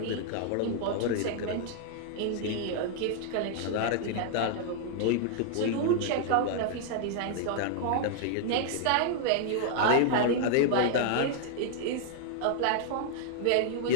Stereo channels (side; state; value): both; different; correlation -0.01